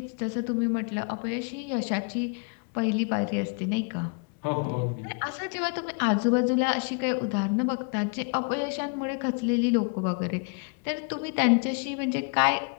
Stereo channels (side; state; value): right; quieter; 34.8 dB